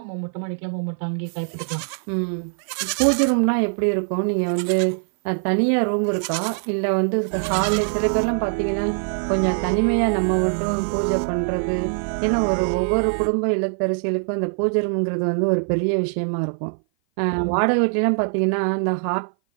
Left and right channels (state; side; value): silent; left; 57 dB below the other